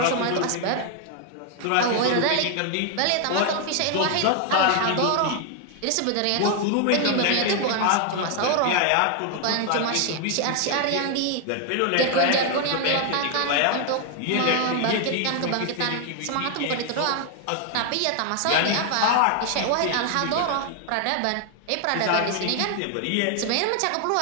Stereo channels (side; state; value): both; different; correlation 0.00